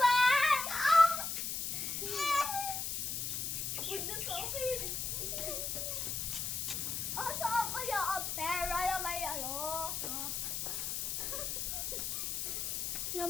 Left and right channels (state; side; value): noise; left; hiss, 2 dB below the sound